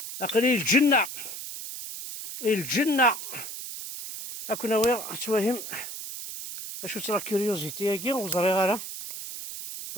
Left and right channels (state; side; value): noise; right; hiss, 8 dB below the sound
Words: اقلي الجنة اكون وير توهم اشو ترا كيوريوزيتي هاكي وزري غالا